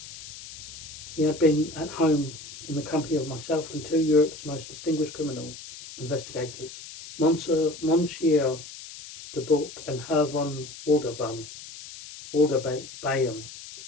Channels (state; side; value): noise; left; hiss, 14 dB below the sound